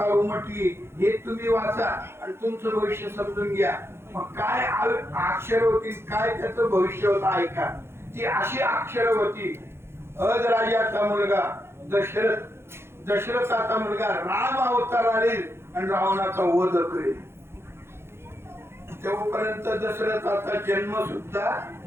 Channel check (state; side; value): late; left; 0.12 ms